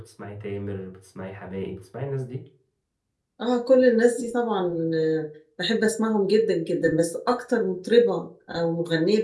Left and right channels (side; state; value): both; identical; correlation 1.00